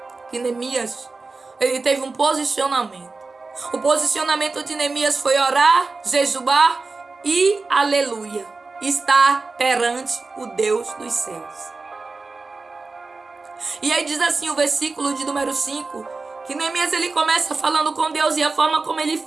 que Neemias, ele teve um posicionamento. O posicionamento de Neemias foi orar, jejuar e, aleluia, estar perante o Deus dos céus. E aí diz assim o versículo de número 5, que Neemias ele começa falando com Deus, e a forma como ele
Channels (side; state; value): left; quieter; 3.9 dB